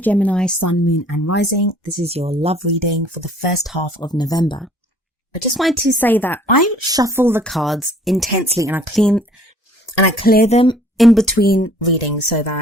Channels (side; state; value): both; normal; correlation 0.56